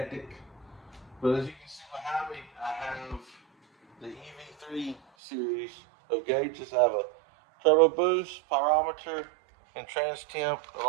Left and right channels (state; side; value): drops out; left; at 5.0 s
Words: But as you can see behind me, I have the Ev3 series of gauges. I have a turbo boost, pyrometer, and trans temp,